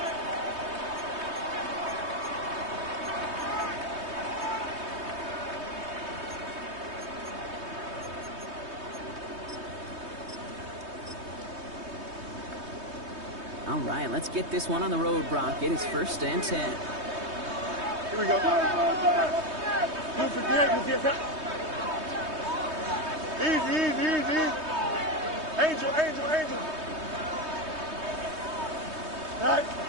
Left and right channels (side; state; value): left; late; 3.2 ms